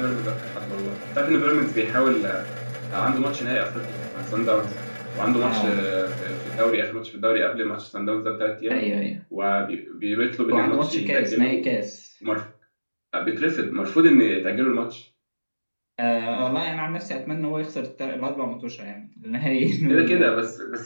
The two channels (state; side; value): inverted; both; correlation -1.00